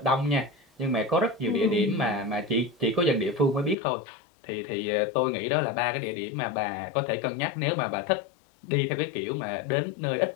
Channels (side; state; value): right; drops out; at 3.8 s